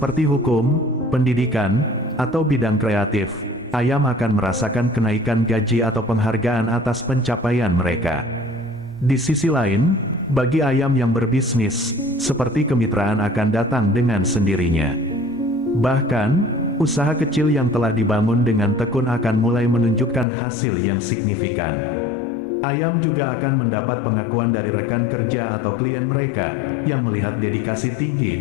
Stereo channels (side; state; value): right; drops out; at 20.2 s